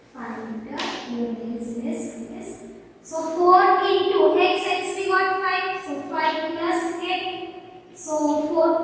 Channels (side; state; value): both; identical; correlation 1.00